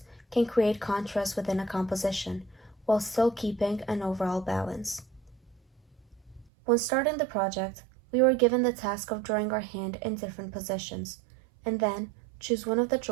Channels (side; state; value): left; drops out; at 6.5 s